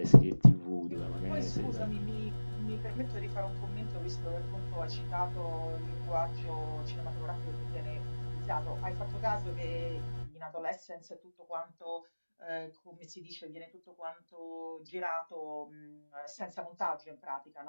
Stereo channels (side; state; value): both; inverted; correlation -1.00